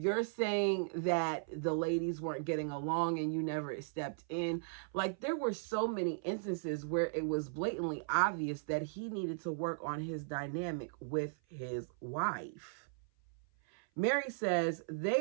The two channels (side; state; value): left; silent; 53 dB below the other